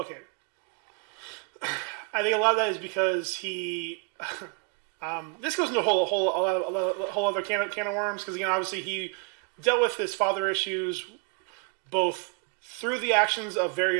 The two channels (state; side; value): quieter; left; 37.7 dB